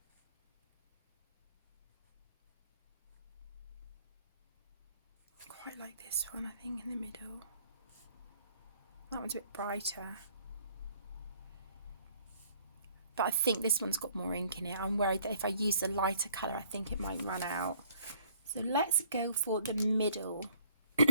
like this one, I think, in the middle. That one's a bit brighter. But I think this one's got more ink in it. I'm worried that if I use the lighter colour, I think it might run out. So let's go for the middle,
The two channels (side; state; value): both; inverted; correlation -0.62